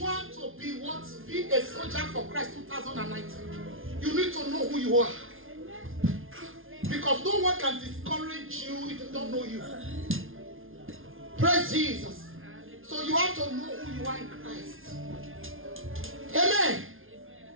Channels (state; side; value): late; left; 0.59 ms